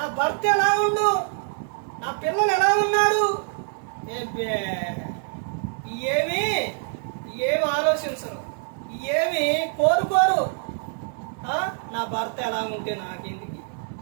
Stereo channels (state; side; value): silent; left; 55 dB below the other